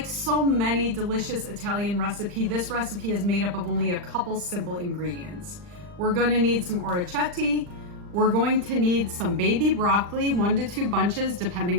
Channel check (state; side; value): late; left; 40 ms